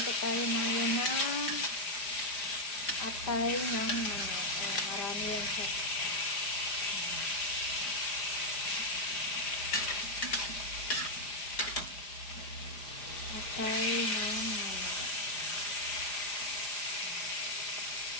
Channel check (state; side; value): late; right; 4.9 ms